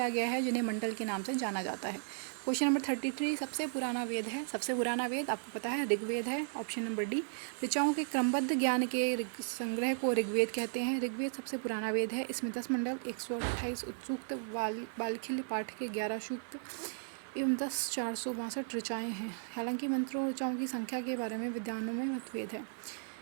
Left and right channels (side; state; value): left; silent; digital silence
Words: गया है, जिन्हें मंडल के नाम से जाना जाता है। क्वेश्चन नंबर 33, सबसे पुराना वेद है। सबसे पुराना वेद आपको पता है ऋग्वेद है, ऑप्शन नंबर डी। ऋचाओं के क्रमबद्ध ज्ञान के संग्रह को ऋग्वेद कहते हैं। ऋग्वेद सबसे पुराना वेद है। इसमें 10 मंडल, 128 सूक्त, बालखिल्य पाठ के 11 सूक्त एवं 10 462 ऋचाएँ हैं। हालांकि मंत्रों ऋचाओं की संख्या के बारे में विद्वानों में मतभेद है।